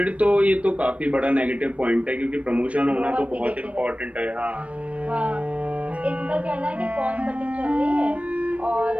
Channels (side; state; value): left; late; 0.064 ms